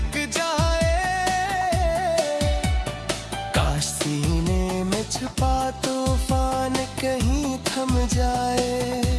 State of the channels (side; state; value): both; identical; correlation 1.00